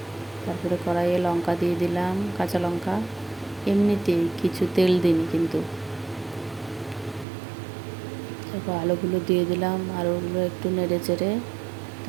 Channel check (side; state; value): left; drops out; at 7.2 s